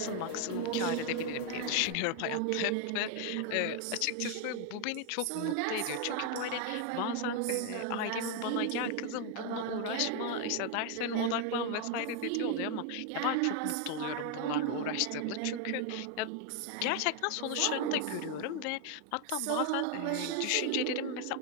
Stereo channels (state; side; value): different; both; correlation 0.01